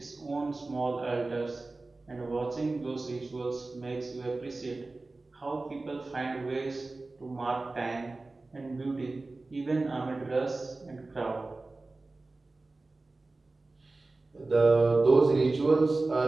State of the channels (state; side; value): quieter; left; 3.3 dB